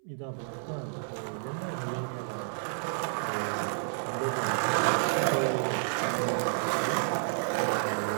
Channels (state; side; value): silent; left; 58 dB below the other